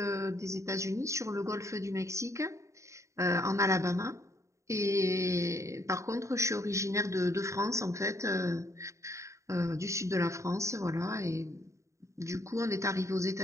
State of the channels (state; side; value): late; left; 0.14 ms